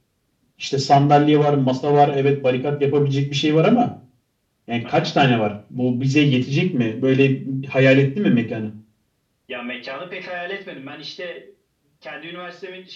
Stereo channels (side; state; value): both; identical; correlation 1.00